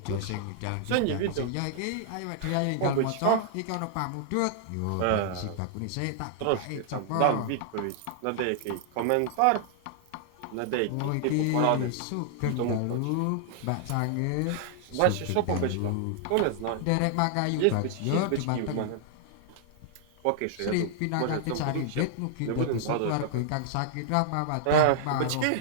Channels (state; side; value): different; both; correlation -0.01